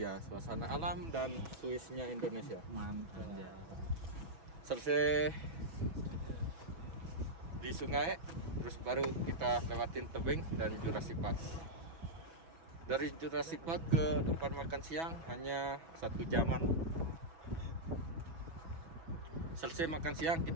suasana alam dan Swissnya Indonesia. Mantap. Selesai di sungai, terus baru kita lewatin tebing dan Jurassic Park. Dari Jurassic Park ke tempat makan siang hanya 1 jaman. Selesai makan siang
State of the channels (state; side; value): late; left; 6.1 ms